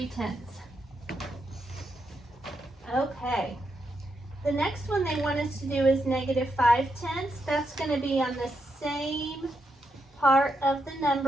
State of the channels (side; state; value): both; normal; correlation 0.82